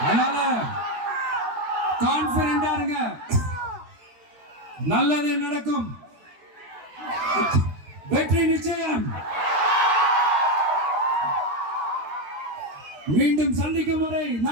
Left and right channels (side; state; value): left; late; 13 ms